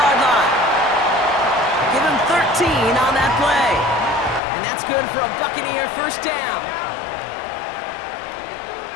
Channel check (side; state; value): right; drops out; at 4.4 s